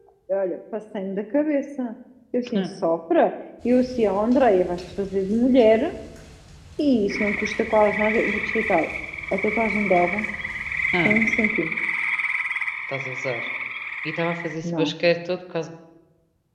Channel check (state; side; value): identical; both; correlation 1.00